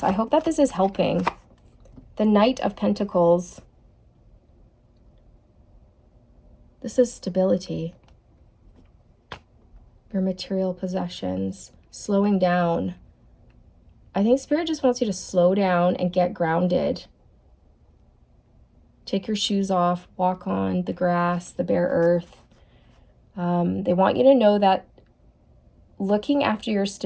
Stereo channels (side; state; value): both; identical; correlation 1.00